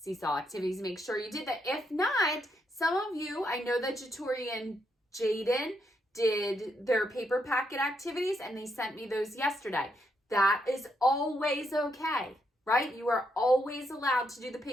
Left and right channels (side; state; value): both; normal; correlation 0.78